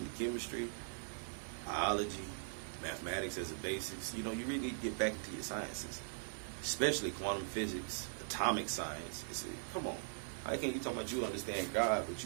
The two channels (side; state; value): left; silent; digital silence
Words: chemistry, biology, mathematics as a basics. You really need to get back into your sciences, especially quantum physics, atomic science. Come on. How can you talk about you understand God, but